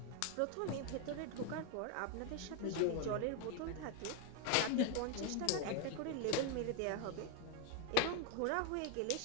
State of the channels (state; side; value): different; both; correlation 0.01